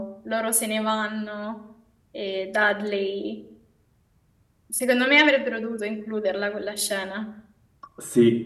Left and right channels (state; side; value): identical; both; correlation 1.00